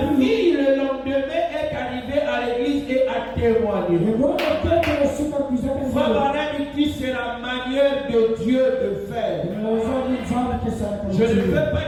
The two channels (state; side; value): identical; both; correlation 1.00